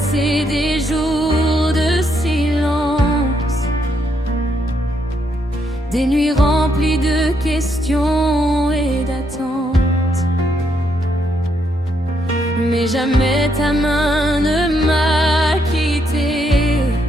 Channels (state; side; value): normal; both; correlation 0.76